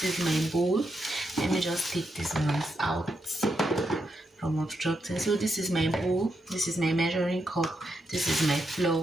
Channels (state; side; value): normal; both; correlation 0.82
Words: is my bowl. Let me just take these ones out from obstructing. So this is my bowl, this is my measuring cup, this is my